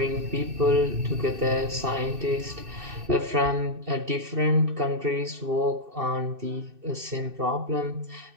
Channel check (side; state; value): left; late; 2.6 ms